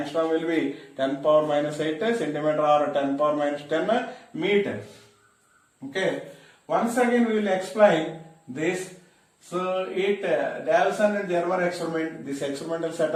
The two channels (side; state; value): both; identical; correlation 1.00